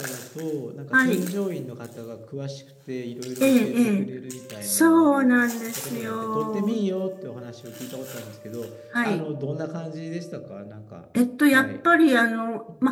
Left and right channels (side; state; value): both; identical; correlation 1.00